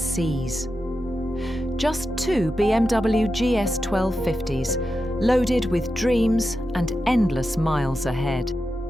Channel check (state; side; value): normal; both; correlation 0.90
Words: Just 2 BMW GS 1250s, loaded with dreams and endless miles ahead.